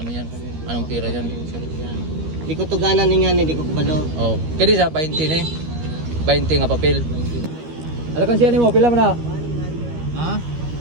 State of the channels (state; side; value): late; left; 13 ms